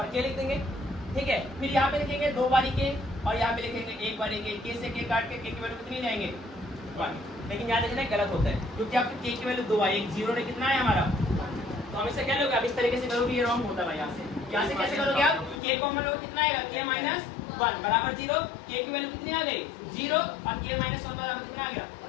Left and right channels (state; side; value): drops out; right; at 15.6 s